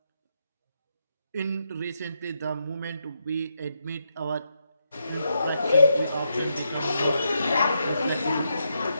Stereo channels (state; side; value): inverted; both; correlation -0.82